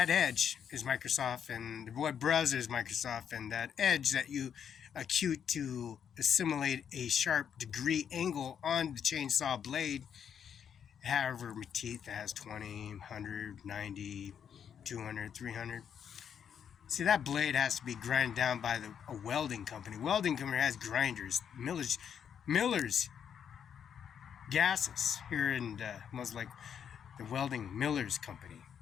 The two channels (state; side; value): quieter; right; 8.1 dB